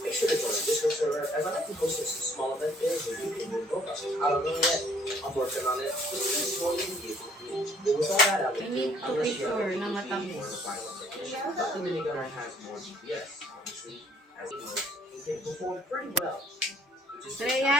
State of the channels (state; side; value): normal; both; correlation 0.61